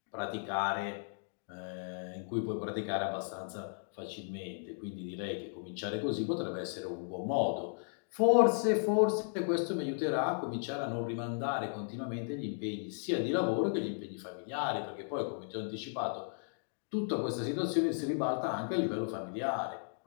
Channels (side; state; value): right; silent; digital silence